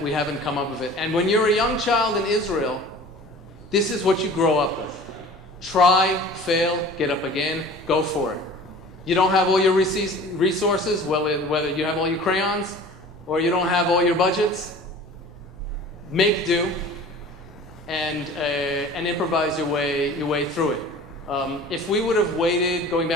come up with it. And when you're a young child in Israel, this is what you grow up with. Try, fail, get up again, go for it. You don't have all your resources, whether you have all your crayons or you don't have all your budgets, make do and improvise your way through it. If we would have waited, going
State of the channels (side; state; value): both; normal; correlation 0.43